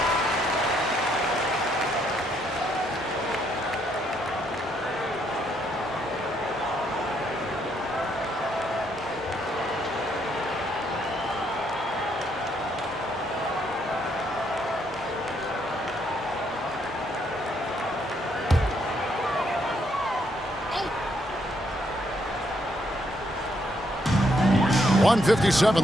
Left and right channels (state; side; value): normal; both; correlation 0.73